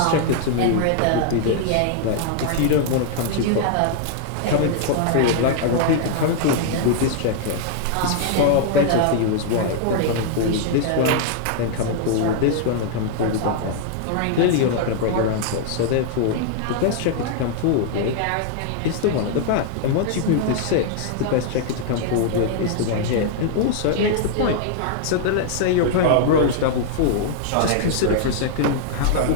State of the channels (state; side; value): different; both; correlation -0.01